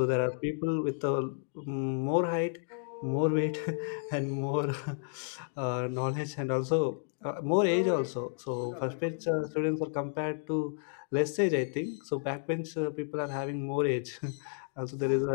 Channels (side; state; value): right; silent; 57 dB below the other